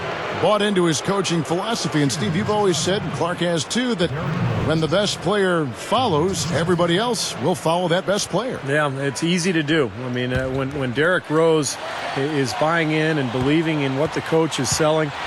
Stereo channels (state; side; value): identical; both; correlation 1.00